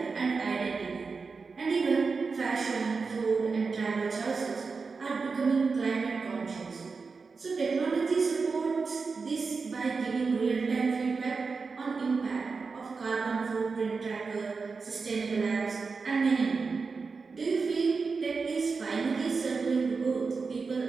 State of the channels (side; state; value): left; quieter; 4.7 dB